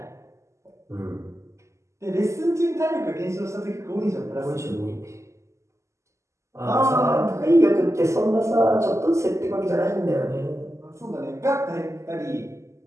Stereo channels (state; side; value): late; left; 0.14 ms